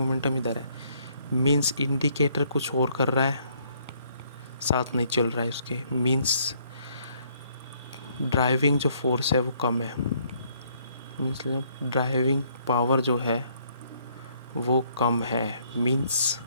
इधर है। मींस इंडिकेटर कुछ और कर रहा है, साथ नहीं चल रहा है उसके। मींस ड्राइविंग जो फोर्स है वो कम है। मीन्स ड्राइविंग पावर जो है वो कम है। मींस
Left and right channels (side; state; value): both; inverted; correlation -0.67